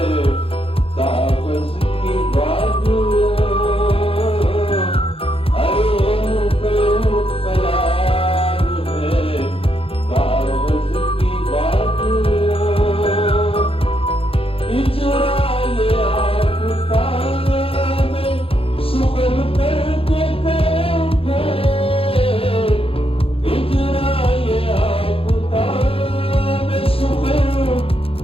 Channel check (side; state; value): right; late; 0.27 ms